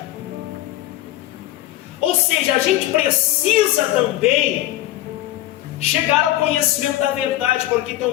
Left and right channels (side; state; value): right; quieter; 14.9 dB